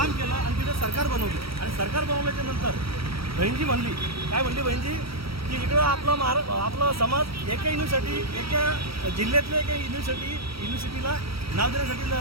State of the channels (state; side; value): late; left; 0.75 ms